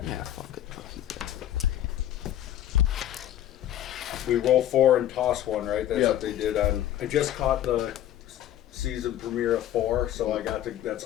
Yeah, fuck it. We roll 4 and toss 1, right? That's what they did on. I just caught the season premiere of 4, so I got to. That's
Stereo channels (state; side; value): quieter; right; 12.0 dB